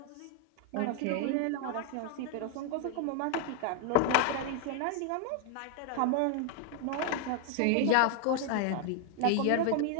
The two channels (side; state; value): both; different; correlation 0.01